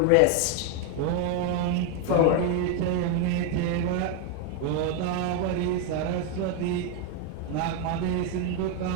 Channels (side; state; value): both; different; correlation 0.01